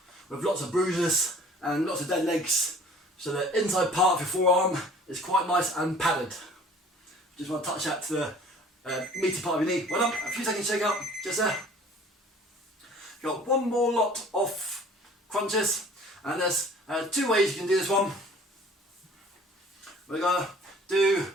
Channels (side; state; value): both; normal; correlation 0.50